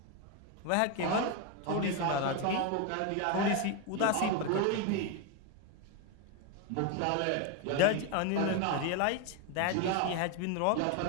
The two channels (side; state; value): both; different; correlation 0.02